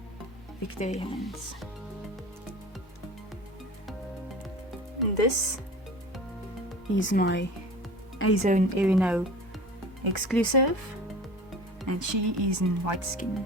victory hands. And this is my Azone Erino exclusive, and she is in white skin,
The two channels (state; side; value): normal; both; correlation 0.38